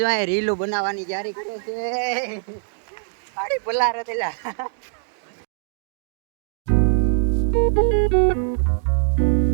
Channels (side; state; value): left; silent; digital silence